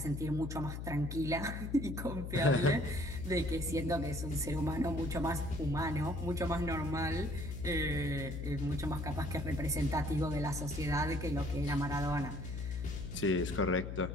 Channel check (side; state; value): left; noise; hum, 6 dB below the sound